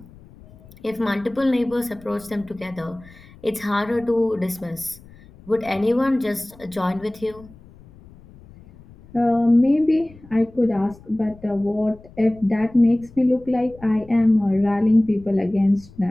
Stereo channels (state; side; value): noise; left; rumble, 23 dB below the sound